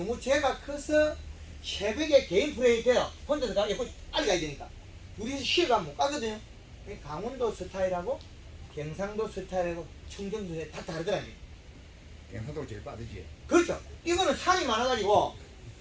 죄가 커서 새벽에 개인 플레이 돼요. 혼자서 가, 예쁘게 빨리 가야 되니까. 둘이서 쉬어가면 못 가거든요. 그러니까 강원도 스타일하고 경상도 스타일하고 청정도 스타일 다 다르더라고요. 경상도가 제일 빠르지. 그렇죠. 이거는 산이 많아가지고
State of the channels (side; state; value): both; identical; correlation 1.00